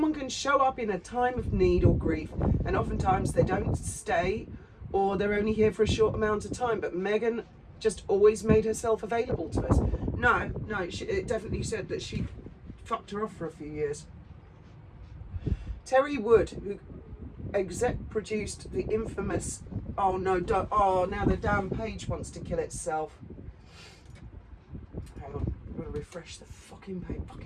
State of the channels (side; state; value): both; identical; correlation 1.00